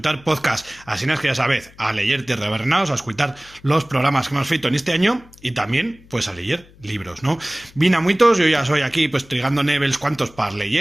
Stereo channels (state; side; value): noise; left; hum, 25 dB below the sound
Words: podcast. Así es que ya sabéis, a leer Tierra de Bernaos, a escuchar los programas que hemos feito en este año y también, pues, a leer libros, ¿no? Vine a muitos, yo ya soy aquí, pues, trigando nevels cuantos para